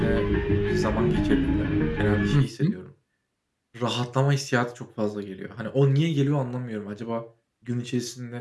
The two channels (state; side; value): identical; both; correlation 1.00